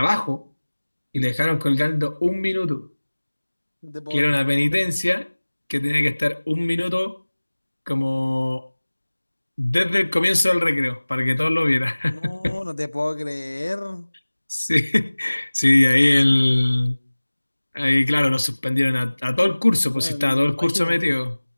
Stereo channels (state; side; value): inverted; both; correlation -1.00